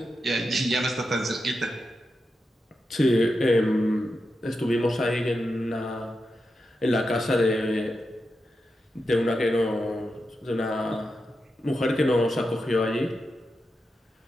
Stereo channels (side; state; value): both; normal; correlation 0.88